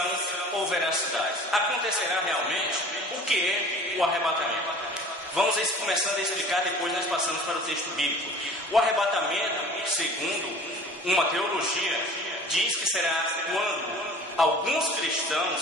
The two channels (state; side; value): normal; both; correlation 0.44